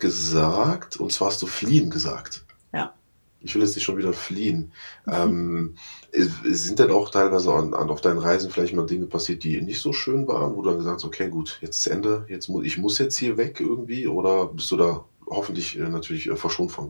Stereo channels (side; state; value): both; inverted; correlation -1.00